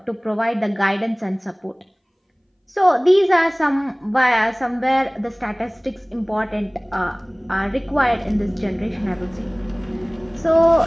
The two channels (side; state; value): both; identical; correlation 1.00